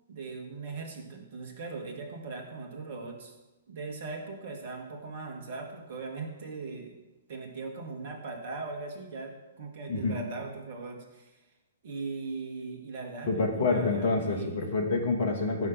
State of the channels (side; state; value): both; inverted; correlation -0.49